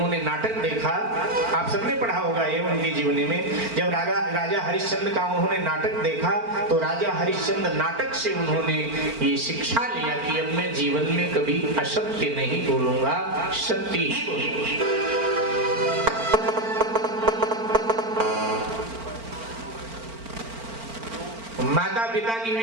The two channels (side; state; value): left; late; 4.4 ms